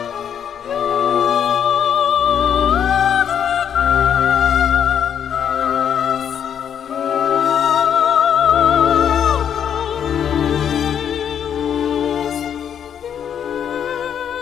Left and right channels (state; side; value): quieter; right; 8.6 dB